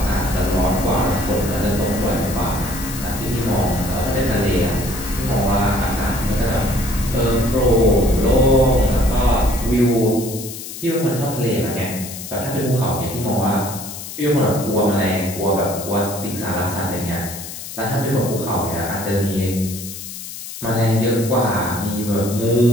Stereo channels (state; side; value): noise; left; hiss, 10 dB below the sound